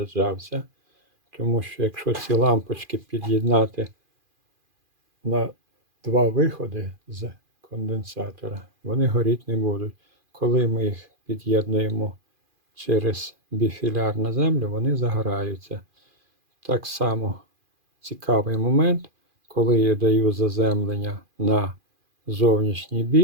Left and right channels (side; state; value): left; late; 2.4 ms